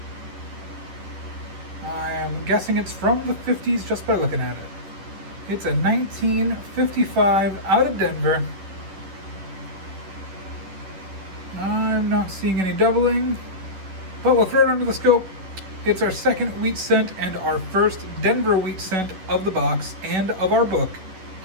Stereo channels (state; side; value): late; left; 11 ms